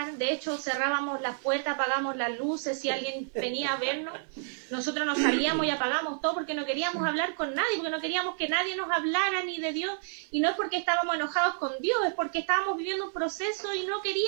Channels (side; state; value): left; silent; digital silence